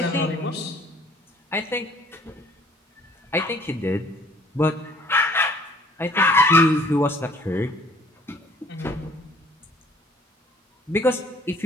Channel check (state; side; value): normal; both; correlation 0.57